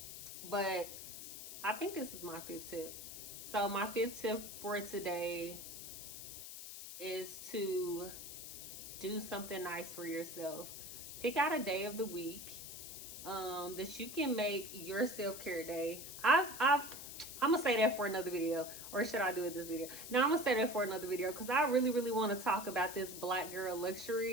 but I think this is my fifth tip. So my fifth tip for today is to do something nice for yourself. Pick out a day of the week that you can make your self-care day. I'm gonna say that for another video, or should I do it this video? No, I'm gonna say that for another video, because I really, really want to talk about this Black Girl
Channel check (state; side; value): noise; left; hiss, 10 dB below the sound